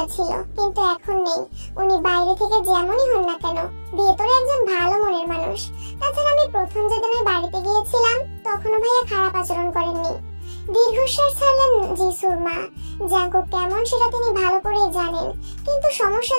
ছিল, কিন্তু এখন নেই। উনি বাইরে থেকে যেমনই হন না কেন, ভেতরে একজন ভালো মনের মানুষ। তাছাড়া আমি প্রথম যেদিন ওই বাড়িতে গিয়েছিলাম তখনও ভাইয়া খারাপ আচরণ করেননি। দীর্ঘশ্বাস ছাড়লেন যিশুর মা। জাঙ্কুক কেমন সেটা তিনি ভালো করেই জানেন, কিন্তু সমস্যা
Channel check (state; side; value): inverted; both; correlation -1.00